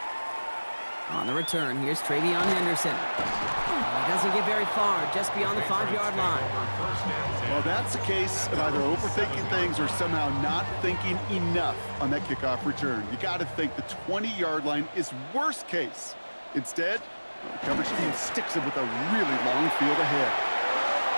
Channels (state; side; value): inverted; both; correlation -1.00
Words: On the return, here's Travion Henderson. He doesn't get very far, just beyond the 5-yard line. Well, that's the case of either overthinking things or somehow not thinking enough on that kickoff return. You got to think the 20-yard line is worst case. Instead, the coverage team sticks him with a really long field ahead.